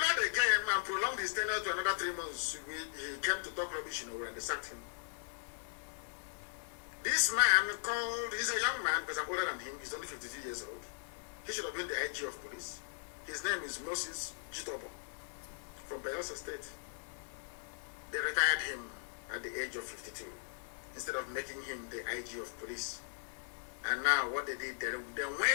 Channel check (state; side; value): silent; right; digital silence